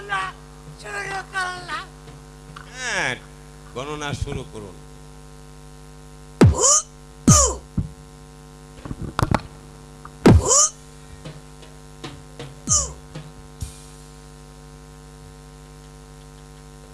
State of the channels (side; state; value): both; identical; correlation 1.00